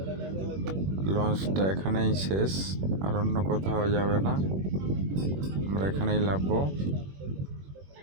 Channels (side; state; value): left; late; 21 ms